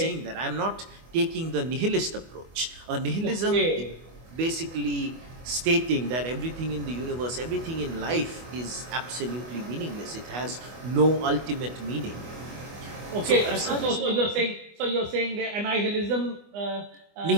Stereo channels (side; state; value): left; late; 24 ms